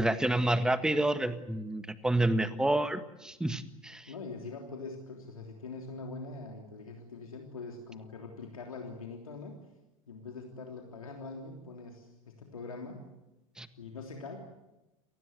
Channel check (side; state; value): both; normal; correlation 0.83